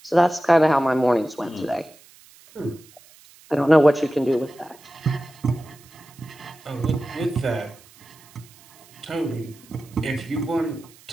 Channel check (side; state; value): right; noise; hiss, 25 dB below the sound